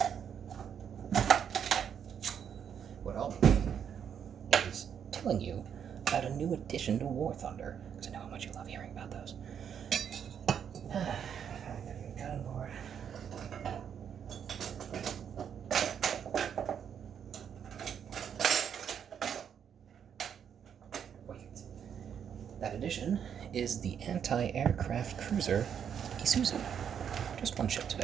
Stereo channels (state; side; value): quieter; left; 8.1 dB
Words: what I'll be doing is telling you about a new addition to War Thunder, because I know how much you love hearing about those. I gotta get a cutting board. Wait. That addition is the anti-aircraft cruiser Isuzu. Just one ship